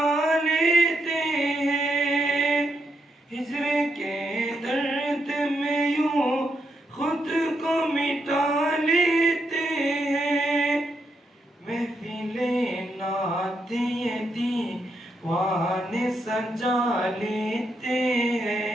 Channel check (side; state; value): both; normal; correlation 0.80